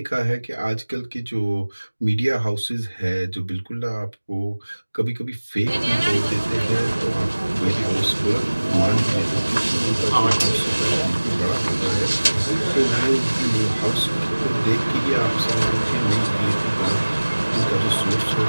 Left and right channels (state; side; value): inverted; both; correlation -1.00